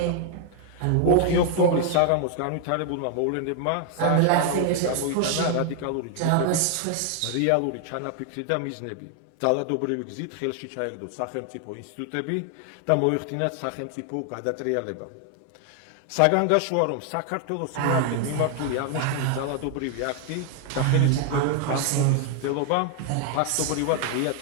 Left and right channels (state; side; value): different; both; correlation 0.00